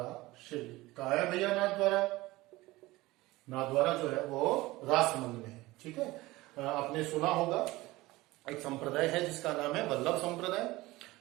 शैली। कहा है भैया नाथद्वारा? नाथद्वारा जो है वो राजसमंद में है, ठीक है। आपने सुना होगा एक संप्रदाय है जिसका नाम है वल्लभ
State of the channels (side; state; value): left; quieter; 19.5 dB